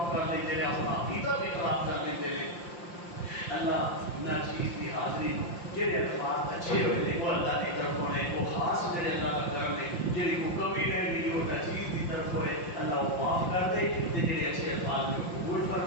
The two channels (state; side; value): late; right; 5.8 ms